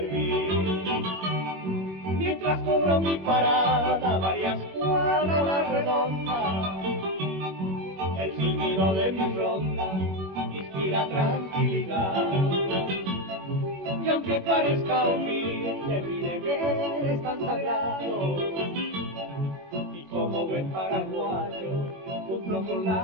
Mientras cubro mi parada varias cuadras a la redonda, el silbido de mi ronda inspira tranquilidad. Y aunque parezca humilde, mi deber es tan sagrado, y como buen paraguayo cumplo con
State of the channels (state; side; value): late; left; 21 ms